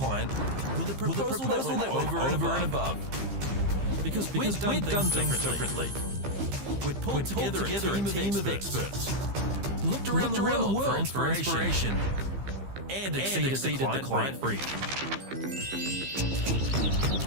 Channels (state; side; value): late; left; 15 ms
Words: with a proposal that went over and above. Because we'd done things differently. We'd pulled together a team of experts. Looked around the world for inspiration. And exceeded the client brief.